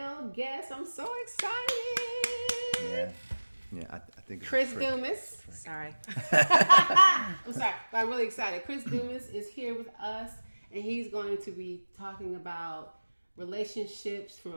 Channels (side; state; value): both; inverted; correlation -1.00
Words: guest. I'm so excited. Yeah, I think it's Chris Dumas. Sorry. I'm sorry, but I'm really excited. Chris Dumas is here with us, and he's going to be talking about relationships